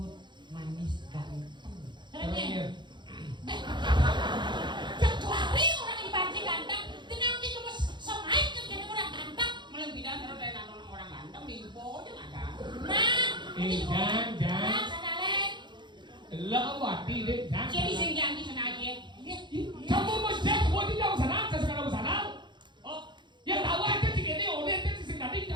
manis, ganteng. Caranya. Kecuali orang dibanting ganteng, tenang kita mas semain kan jadi orang ganteng. Malah bidan kalau dari nonton orang ganteng di ibu aja nggak ada. Nah, jangan. sadalen. Lỡ wati deh, jangan. Jadi senjang di sana aja. Kamu mau cek buat di jauh sana, saya sekarang sana. Oh, Yang tahu aja sih ini, udah itu sih tadi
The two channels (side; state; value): left; late; 0.22 ms